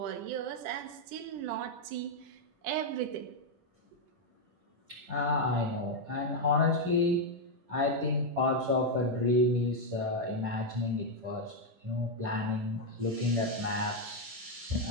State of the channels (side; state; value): left; late; 10 ms